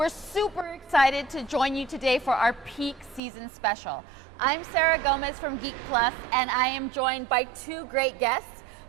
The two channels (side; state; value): left; drops out; at 3.2 s